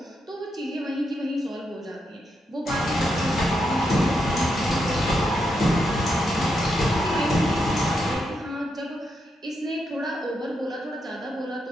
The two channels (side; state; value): both; normal; correlation 0.83